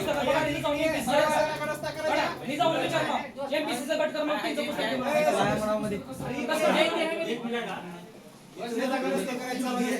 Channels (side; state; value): both; identical; correlation 1.00